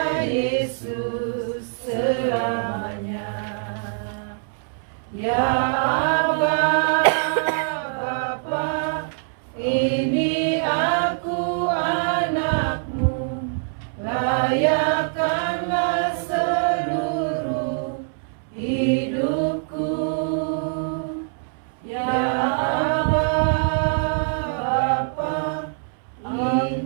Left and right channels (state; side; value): silent; left; 63 dB below the other